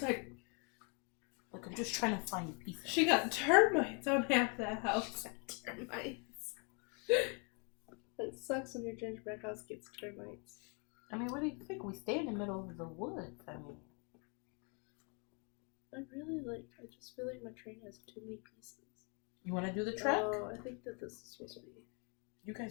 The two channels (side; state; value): right; quieter; 35.1 dB